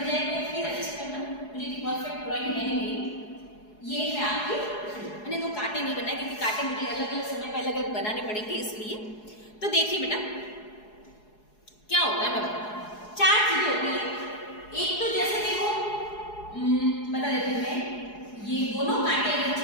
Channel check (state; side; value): late; right; 4.8 ms